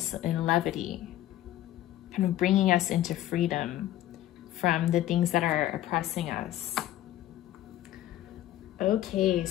and levity, kind of bringing us into freedom from the things that are oppressing us. Okay,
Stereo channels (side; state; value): right; quieter; 13.6 dB